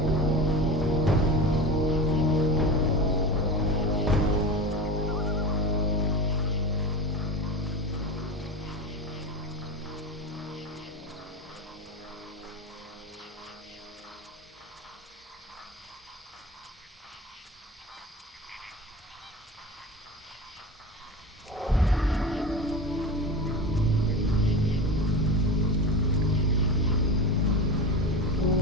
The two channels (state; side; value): normal; both; correlation 0.28